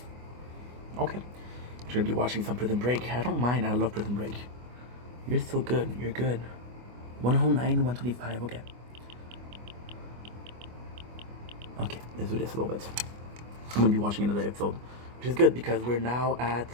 Okay. You're gonna be watching some Prison Break. I don't mind, I love Prison Break. You're still good. You're good. 109, 125. Okay. Okay, let's do this a little bit. I'm gonna be watching another episode, which is good because we're now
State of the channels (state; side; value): late; left; 24 ms